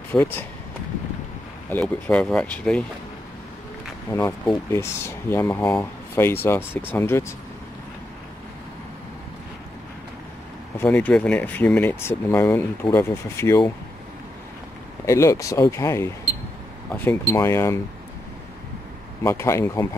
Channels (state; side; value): normal; both; correlation 0.84